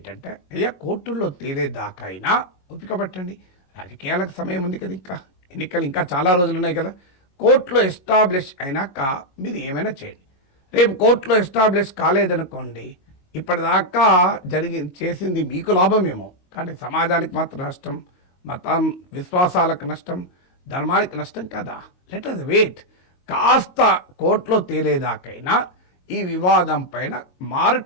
అయ్యా కోర్టుల్లో తేలేదాకా అయినా ఓపిక పట్టండి. రాజకీయాలకు సమయం ఉంది కదా, ఇంకా ఎన్నికలు ఇంకా చాలా రోజులు ఉన్నాయి కదా. కోర్టులో ఎస్టాబ్లిష్ అయినాక మీరు ఏమైనా చేయండి. రేపు కోర్టులో ఎస్టాబ్లిష్ కాలేదనుకోండి, ఇప్పటిదాకా చేసింది మీకు లాభమేమో, కానీ సమాజానికి మాత్రం నష్టం, మతం విశ్వాసాలకు నష్టం, ధర్మానికి నష్టం కదా. Let us wait. కాస్త కోర్టులో తేలేదాకైనా ఈ వివాదం పైన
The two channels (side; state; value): right; late; 22 ms